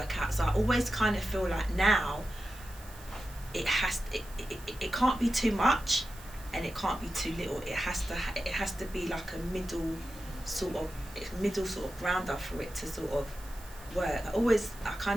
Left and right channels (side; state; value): right; noise; hiss, 20 dB below the sound